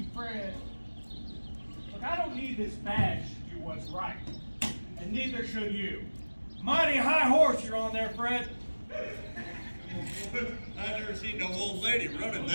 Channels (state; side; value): inverted; both; correlation -1.00